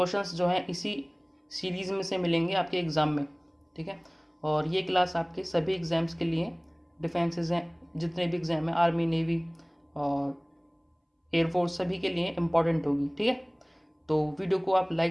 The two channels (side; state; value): both; identical; correlation 1.00